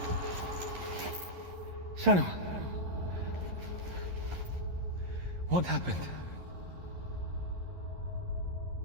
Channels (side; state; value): left; late; 11 ms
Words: Senua! What happened?